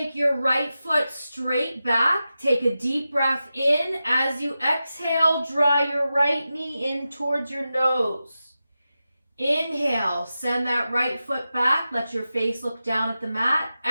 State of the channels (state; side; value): inverted; both; correlation -0.92